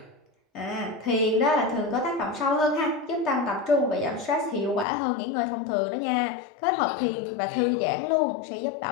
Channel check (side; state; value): right; drops out; at 4.9 s